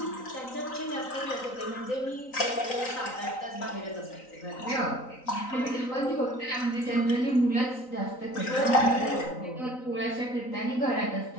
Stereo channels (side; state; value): right; late; 3.9 ms